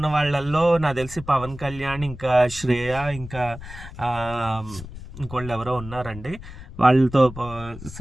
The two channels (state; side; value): noise; left; rumble, 14 dB below the sound